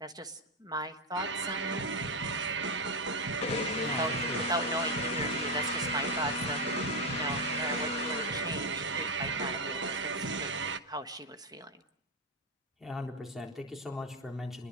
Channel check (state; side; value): normal; both; correlation 0.07